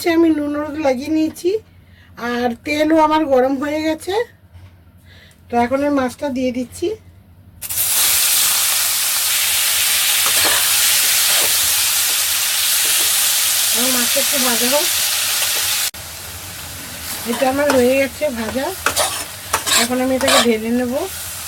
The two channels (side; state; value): both; identical; correlation 1.00